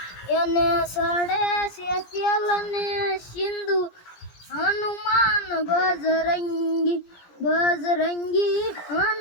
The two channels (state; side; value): late; right; 17 ms